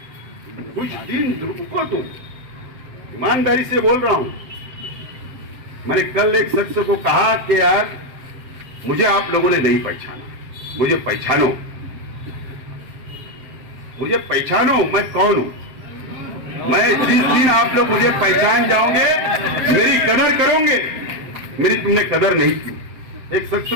कुछ दिन रुको, तुम ईमानदारी से बोल रहा हूं। मैंने कल एक शख्स को कहा कि यार मुझे आप लोगों ने नहीं पहचाना, मुझे पहचानो, मुझे पहचानो, मैं कौन हूं। मैं जिस दिन आप लोग मुझे पहचान जाओगे, मेरी कदर करोगे। मेरी तुमने कदर नहीं की। एक शख्स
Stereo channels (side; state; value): left; late; 7.6 ms